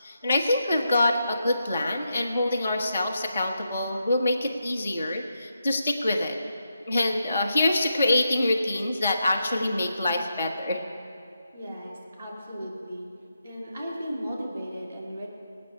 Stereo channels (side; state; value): both; inverted; correlation -0.84